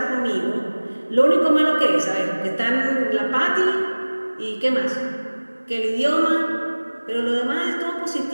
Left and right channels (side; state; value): both; inverted; correlation -1.00